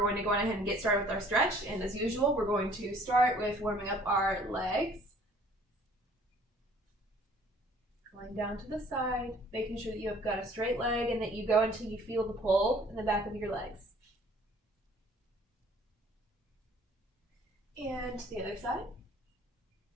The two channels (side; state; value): both; normal; correlation 0.56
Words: to go on ahead and get started with our stretch. And as usual, we're going to start with warming up our legs. Going down to the side, making sure that you have got a straight leg and that you go until you feel the pull in the back of your legs. And to the other side.